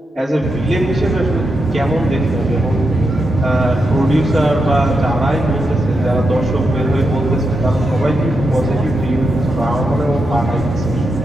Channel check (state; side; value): normal; both; correlation 0.85